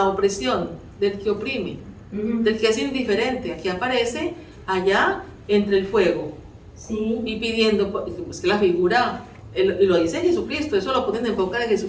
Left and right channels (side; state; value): both; identical; correlation 1.00